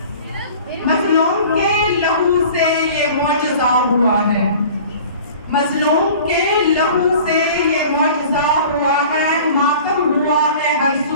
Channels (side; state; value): both; inverted; correlation -0.44